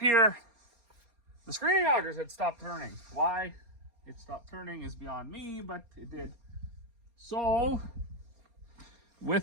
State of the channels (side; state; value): left; late; 4.3 ms